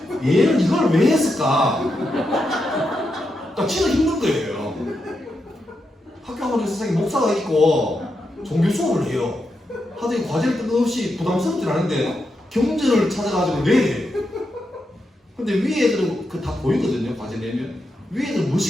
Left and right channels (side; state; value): both; normal; correlation 0.85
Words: 얘는 이걸 왜 했을까? 그러니까 진짜 힘든 거예요. 학교 가면 세상에 목사가 있고 종교 수업을 해요. 하더니 과제를 뜬금없이 부담스럽진 않은데 경전을 찾아가지고 내야 근데 위에 애들은 그 다 보이거든요. 과제 내면 위에 애들은